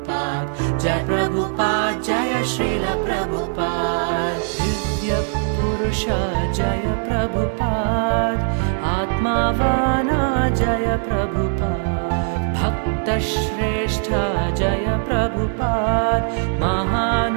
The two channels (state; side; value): silent; left; 55 dB below the other